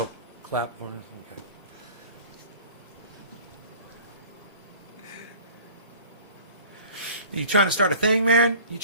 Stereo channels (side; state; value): both; inverted; correlation -0.46